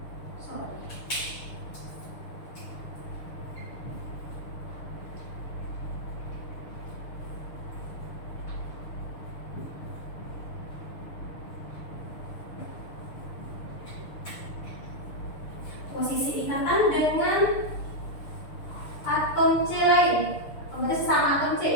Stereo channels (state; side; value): late; right; 6.7 ms